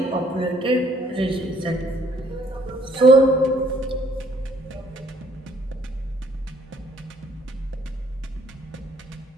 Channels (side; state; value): both; normal; correlation 0.63